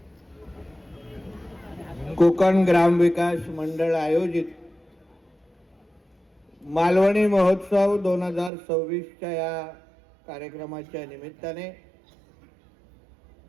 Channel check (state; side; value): drops out; left; at 8.5 s